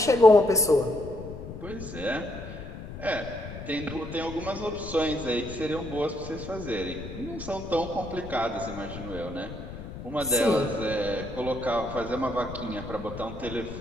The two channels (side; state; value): left; noise; rumble, 11 dB below the sound